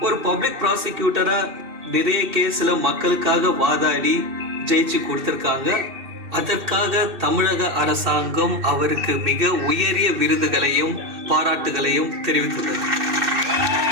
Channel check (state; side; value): late; left; 2.6 ms